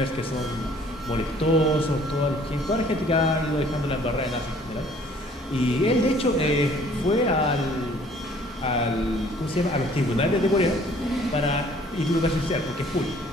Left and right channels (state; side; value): normal; both; correlation 0.56